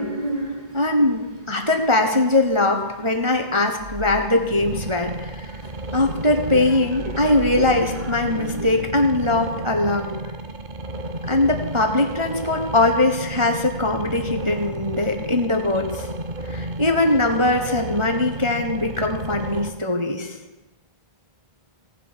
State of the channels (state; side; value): late; left; 1.4 ms